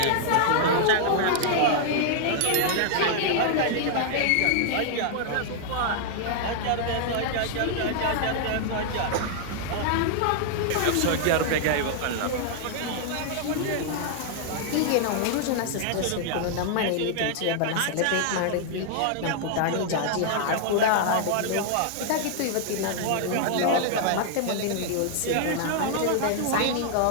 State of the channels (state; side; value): different; both; correlation -0.01